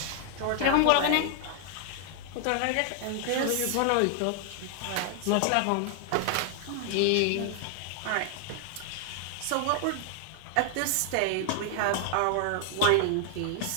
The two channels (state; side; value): different; both; correlation 0.00